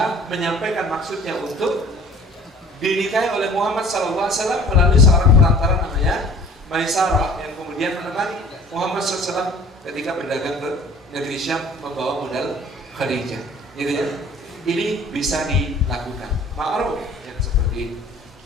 menyampaikan maksudnya untuk dinikahi oleh Muhammad SAW melalui seorang perantara namanya Maisarah, yang kemudian menemani Muhammad SAW ketika berdagang ke negeri Syam membawa modal Khadijah. Gitu ya. Ini bisa dilakukan. Ma'ruf yang seperti ini.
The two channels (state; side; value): normal; both; correlation 0.49